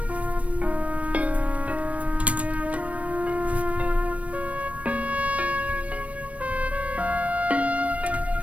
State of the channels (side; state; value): left; late; 0.065 ms